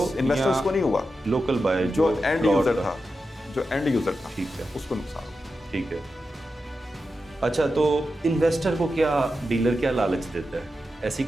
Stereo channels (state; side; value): normal; both; correlation 0.90